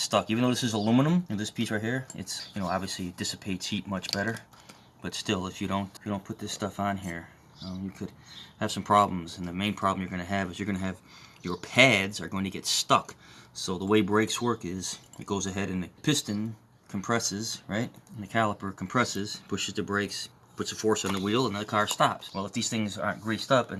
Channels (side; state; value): both; identical; correlation 1.00